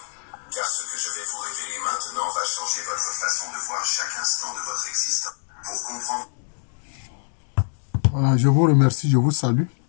car ce que je vais vous révéler maintenant va changer votre façon de voir chaque instant de votre existence. Pour comprendre... Voilà, je vous remercie, je vous salue.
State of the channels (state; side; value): silent; right; 62 dB below the other